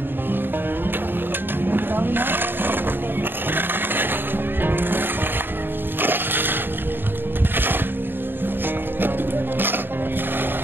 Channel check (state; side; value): late; left; 0.097 ms